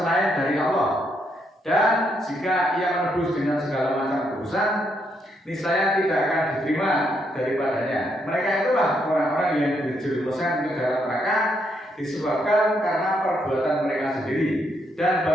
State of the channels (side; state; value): both; normal; correlation 0.76